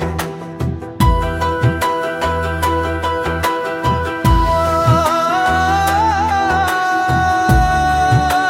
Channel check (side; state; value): both; identical; correlation 1.00